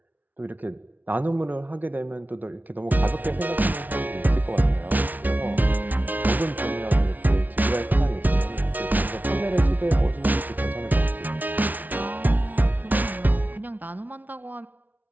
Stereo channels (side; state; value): left; late; 0.079 ms